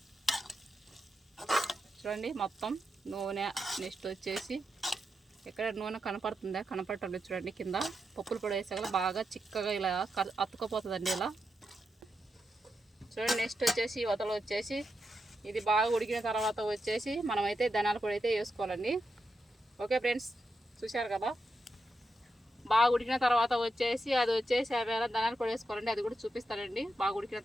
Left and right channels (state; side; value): normal; both; correlation 0.86